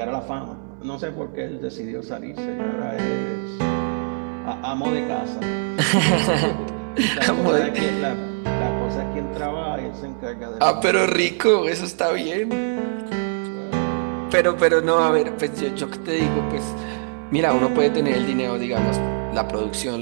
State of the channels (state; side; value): silent; left; 64 dB below the other